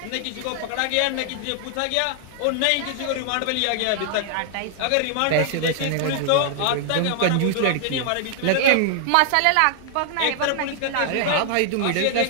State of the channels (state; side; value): different; both; correlation 0.00